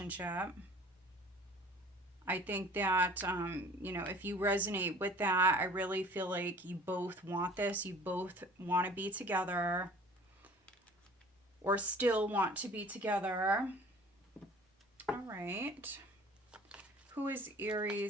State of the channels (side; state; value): both; normal; correlation 0.48